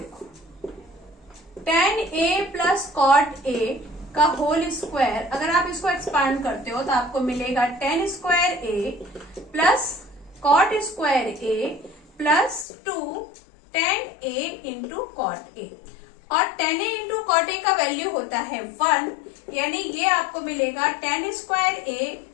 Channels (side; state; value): right; drops out; at 12.7 s